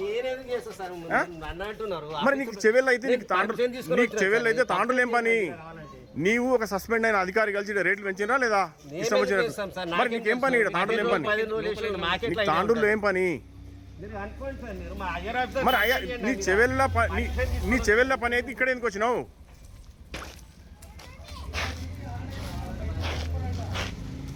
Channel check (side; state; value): both; identical; correlation 1.00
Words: మరి నీకు చెవెల్ అయితే నీకు చెవెల్ అయితే తాండ్రులు ఏం పని? నీవు ఒక సస్పెండ్ అయిన అధికారి కలిసి రేట్లు పెంచినా లేదా? ఇష్టం వచ్చినట్టు. మరి నీకేం పని? తాండ్రులు ఏం పని? తాండ్రులు ఏం పని? మరి అయ్యా నీ చెవెళ్ళ పని అయితే ఇక్కడ ఎందుకు వచ్చినావు?